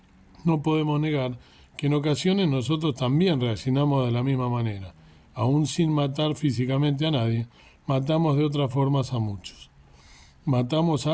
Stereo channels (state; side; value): identical; both; correlation 1.00